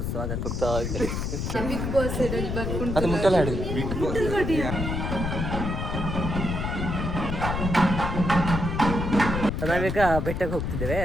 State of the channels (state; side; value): noise; left; rumble, 2 dB below the sound